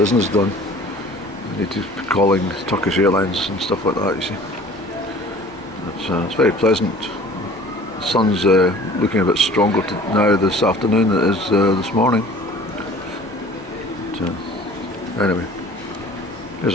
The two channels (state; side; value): normal; both; correlation 0.48